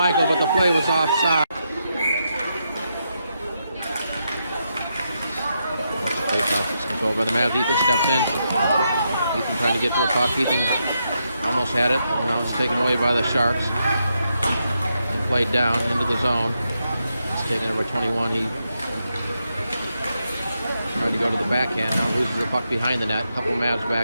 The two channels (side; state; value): both; inverted; correlation -0.83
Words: but the play was offside. Face-off controlled by the Mavs. Ethan steps in. Ethan trying to get to the puck. Ethan almost had it. Now it's taken away by the Sharks. And played down into the zone. It's taken over 21. He tried to go to the backhand. Now loses the puck behind the net. A couple Mavs